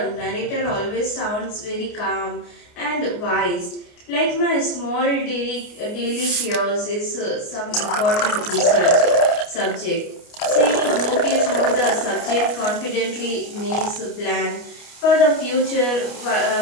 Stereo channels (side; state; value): right; late; 29 ms